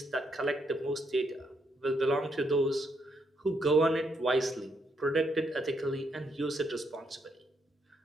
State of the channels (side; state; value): both; normal; correlation 0.77